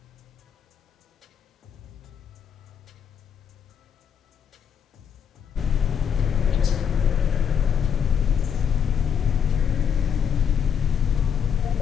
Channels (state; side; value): quieter; right; 7.7 dB